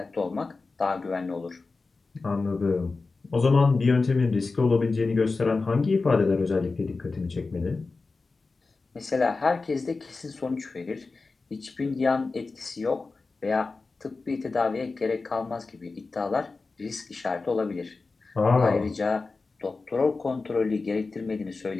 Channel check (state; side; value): quieter; right; 3.9 dB